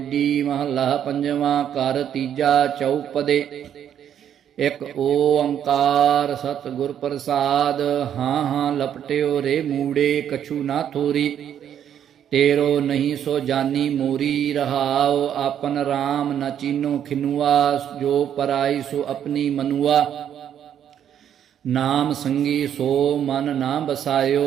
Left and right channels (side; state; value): left; quieter; 9.5 dB